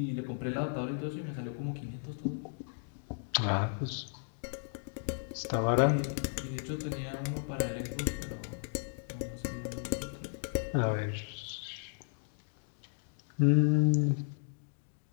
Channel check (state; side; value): silent; right; digital silence